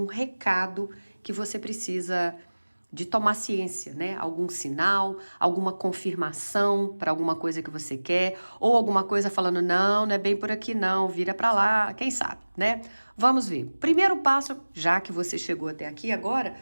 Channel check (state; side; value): inverted; both; correlation -1.00